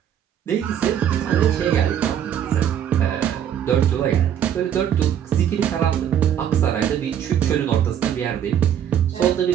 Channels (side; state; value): left; quieter; 9.6 dB